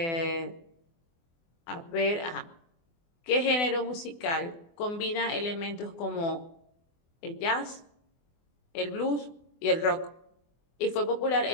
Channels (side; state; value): right; late; 24 ms